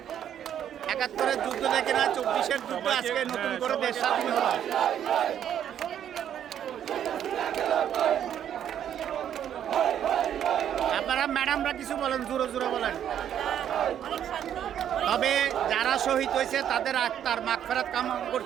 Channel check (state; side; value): quieter; left; 9.9 dB